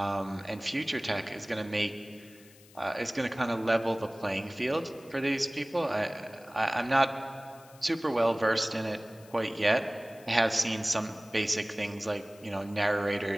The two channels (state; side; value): noise; left; hiss, 24 dB below the sound